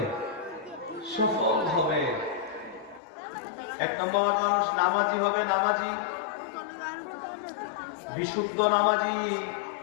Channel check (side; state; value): right; drops out; at 3.0 s